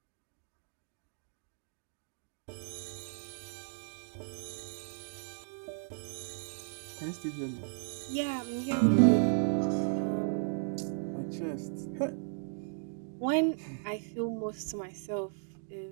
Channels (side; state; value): left; silent; digital silence